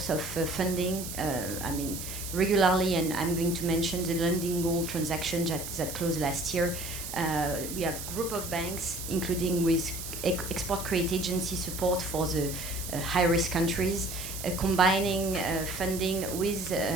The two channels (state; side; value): noise; right; hiss, 8 dB below the sound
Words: of funding. Regularly, and I'm going to mention the Lundin Gold transaction that closed last year. We have a group of banks, including with export credit agency support for the high-risk countries, combining funding with